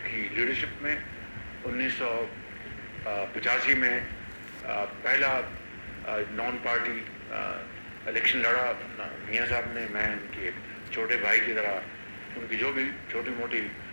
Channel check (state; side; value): inverted; both; correlation -1.00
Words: کی لیڈرشپ میں. 1985 میں پہلا نان پارٹی الیکشن لڑا میاں صاحب نے. میں ان کے چھوٹے بھائی کی طرح ان کی جو بھی چھوٹی موٹی